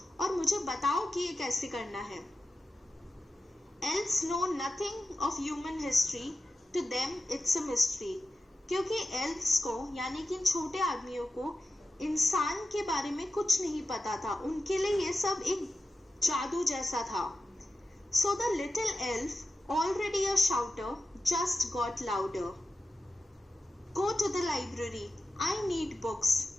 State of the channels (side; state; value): both; normal; correlation 0.93